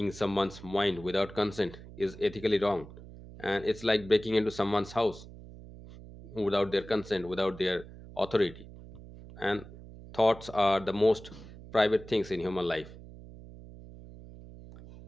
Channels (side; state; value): right; noise; hum, 16 dB below the sound